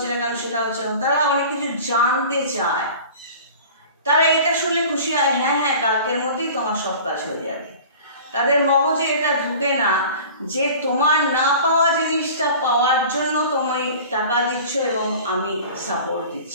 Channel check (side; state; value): both; inverted; correlation -0.41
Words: না কেন, সেটা হচ্ছে না। তারা অনেক কিছু জানতে চায়, তারা এটা শুনলে খুশি হয়, হ্যাঁ হ্যাঁ কালকের মধ্যেই তোমার সব কাজ হয়ে যাবে। তাদের মগজে এটা ঢুকে না যে তোমার না পাওয়া জিনিসটা পাওয়ার জন্য তুমি টাকা দিচ্ছ এবং আমি সাপোর্ট